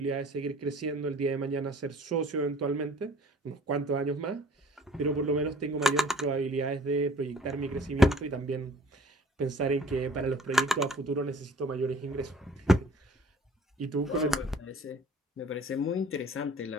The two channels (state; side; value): normal; both; correlation 0.52